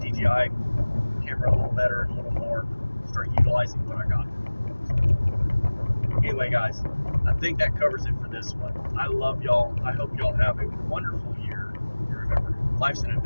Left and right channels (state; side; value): inverted; both; correlation -1.00